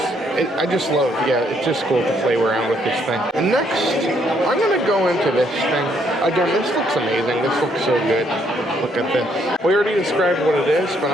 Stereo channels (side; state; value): both; normal; correlation 0.70